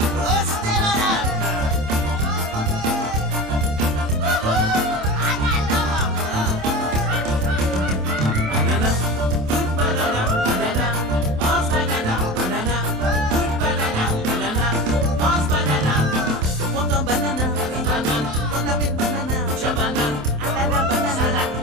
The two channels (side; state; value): left; late; 27 ms